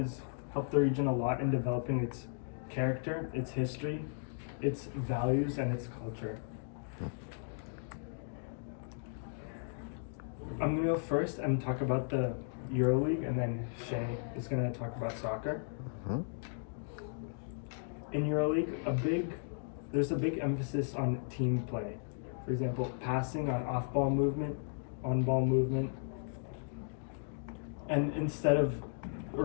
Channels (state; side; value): silent; right; digital silence